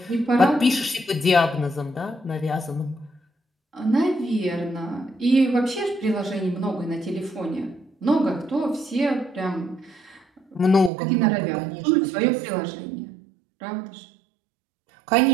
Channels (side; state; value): left; drops out; at 10.9 s